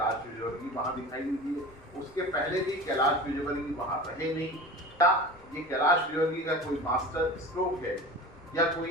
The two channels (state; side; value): noise; left; rumble, 25 dB below the sound